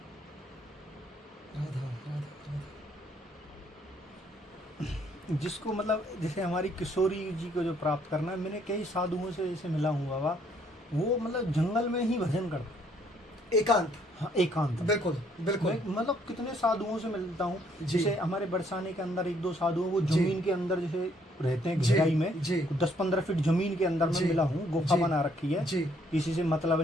राधा राधा राधा। जिसको मतलब जैसे हमारी किशोरी जी को जो प्राप्त करना है, मैंने कई साधुओं से जैसे मिला हूँ बाबा, वो मतलब जंगल में ही भजन करते, एकांत। हाँ, एकांत, बिल्कुल बिल्कुल। मैं मतलब कितने साधुओं से मिलता हूँ, जी। जैसे हमारे बरसाने के अंदर 1-2 साधु हैं, वो जी। जमीन के अंदर जैसे रहते हैं, जी, गहराई में, जी। 10-15 फीट जमीन के अंदर जी। में मिला हूँ, गुफा जी। बना रखी है, जी किसी से मतलब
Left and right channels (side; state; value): both; normal; correlation 0.66